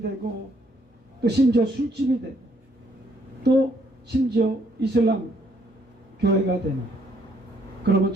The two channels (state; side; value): normal; both; correlation 0.69